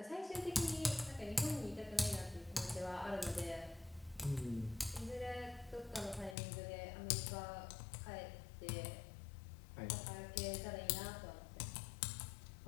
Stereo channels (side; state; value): right; drops out; at 6.4 s